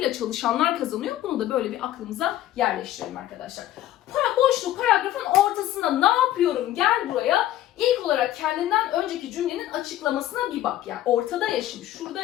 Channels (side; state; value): right; quieter; 13.4 dB